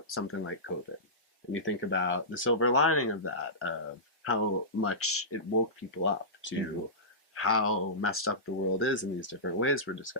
something like COVID, and you think about the silver lining of that, of how much it woke people up to how messed up the world is in these different ways we're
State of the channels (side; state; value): both; normal; correlation -0.18